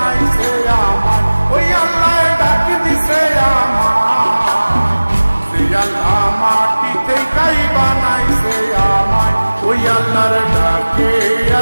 আমায়। ওই আল্লাহ ডাক দিছে আমায়, সে আল্লাহ মাটি থেকেই বানাইছে আমায়। ওই আল্লাহর ডাকে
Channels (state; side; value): inverted; both; correlation -1.00